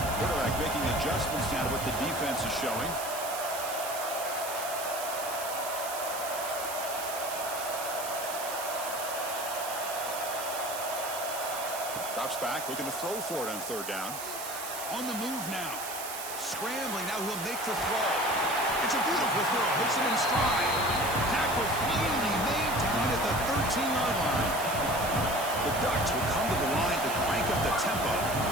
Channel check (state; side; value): noise; right; hiss, 7 dB below the sound